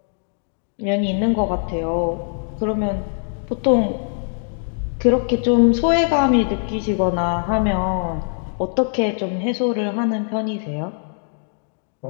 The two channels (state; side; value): silent; right; digital silence